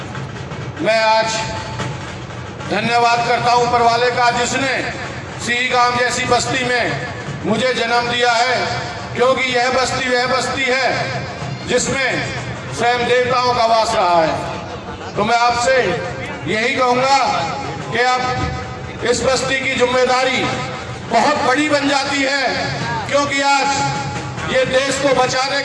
मैं आज धन्यवाद करता हूं ऊपर वाले का, जिसने सिही गांव जैसी बस्ती में मुझे जन्म दिया है, क्योंकि यह बस्ती वह बस्ती है जिसमें स्वयं देवताओं का वास रहा है। तो मैं आपसे यही कहूंगा कि अब इस बस्ती की जिम्मेदारी बहुत बड़ी बन जाती है, क्योंकि आज ये देश को बचाने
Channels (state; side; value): identical; both; correlation 1.00